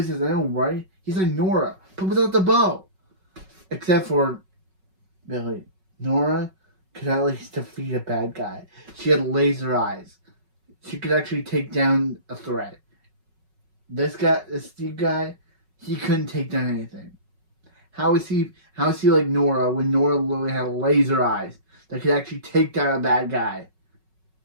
says, I know, right? He's like Nora, but without the bow. Except for Billy. Nora could at least defeat a bad guy. She had laser eyes. She could actually take down a threat. This Steve guy, he couldn't take down anything. How is he like Nora when Nora literally had laser eyes that could actually take down a bad guy?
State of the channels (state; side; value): late; left; 5.4 ms